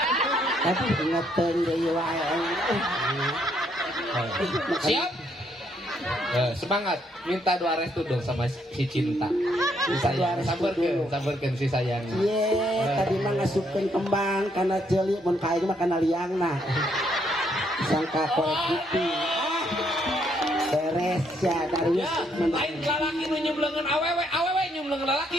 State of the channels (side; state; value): both; normal; correlation 0.72